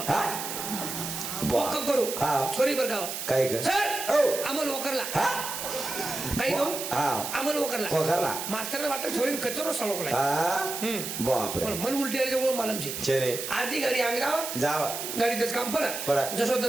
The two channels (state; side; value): noise; right; hiss, 5 dB below the sound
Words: हा ओक्को करू हा छोरी बर गाव काय कर सर ओ अमल वकरला हा काही कहू हा अमल वकरला वकरला मास्तरने वाटत छोरीन कचरो सळकलाय हा बाप रे पण मन उलटी आहे जवळ मालमची छेनी आधी गाडी अंगाव जावा गाडी दस काम पड पड. जसो